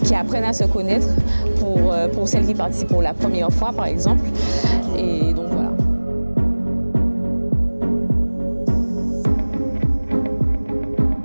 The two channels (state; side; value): inverted; both; correlation -1.00